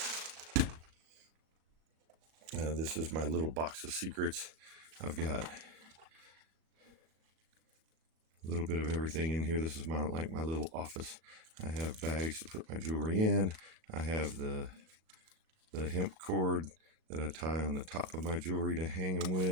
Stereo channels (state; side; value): late; left; 38 ms